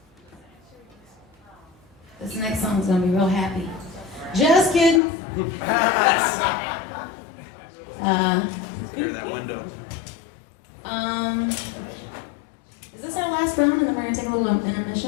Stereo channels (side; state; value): right; drops out; at 5.0 s